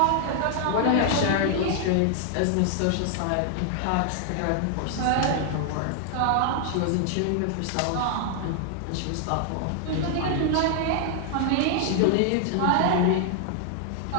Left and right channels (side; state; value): both; different; correlation 0.00